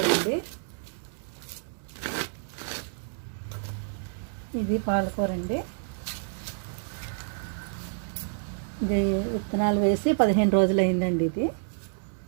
అండి. ఇది పాలకూర అండి. ఇది విత్తనాలు వేసి 15 రోజులు అయిందండి.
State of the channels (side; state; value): left; silent; digital silence